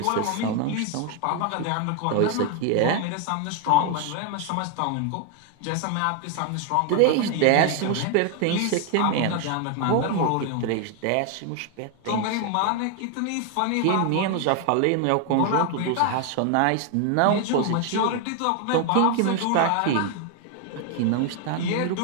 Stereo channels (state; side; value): different; both; correlation 0.01